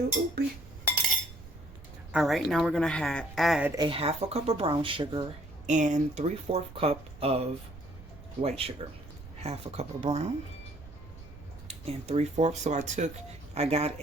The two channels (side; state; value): right; noise; rumble, 17 dB below the sound